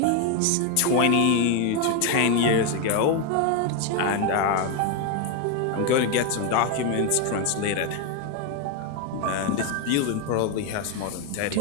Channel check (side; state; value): both; different; correlation 0.02